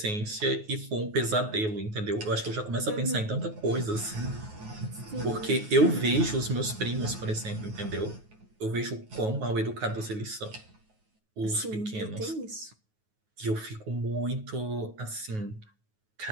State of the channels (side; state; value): left; late; 9.4 ms